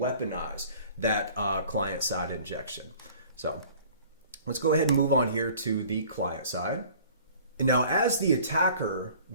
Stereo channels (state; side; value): inverted; both; correlation -0.49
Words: that client-side injection. So let's go ahead and move on here to the client side. And now, as the attacker,